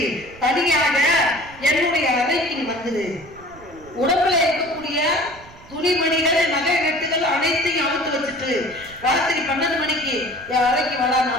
தனியாக என்னுடைய அறைக்கு வந்தது, உடம்புல இருக்கக்கூடிய துணிமணிகள் நகை நட்டுகள் அனைத்தையும் அவுத்து வச்சுட்டு ராத்திரி 12 மணிக்கு என் அறைக்கு வர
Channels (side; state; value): right; noise; rumble, 22 dB below the sound